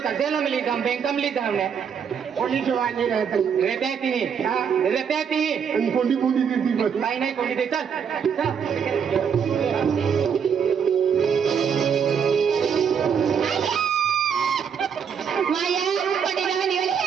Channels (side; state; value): left; quieter; 7.2 dB